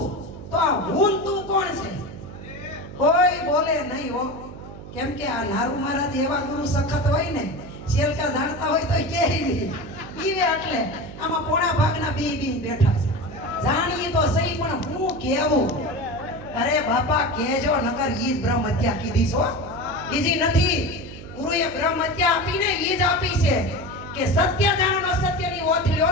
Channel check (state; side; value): noise; right; hum, 14 dB below the sound